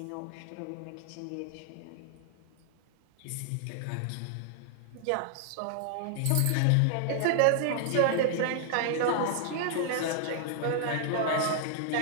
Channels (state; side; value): different; both; correlation 0.00